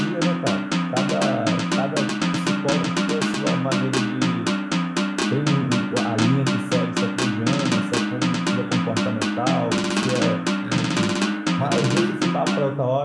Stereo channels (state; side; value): identical; both; correlation 1.00